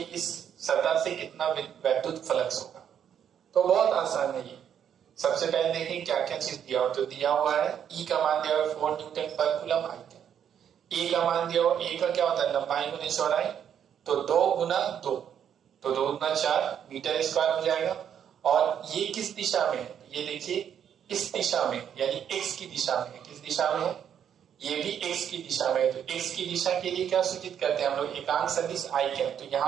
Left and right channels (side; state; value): left; quieter; 8.8 dB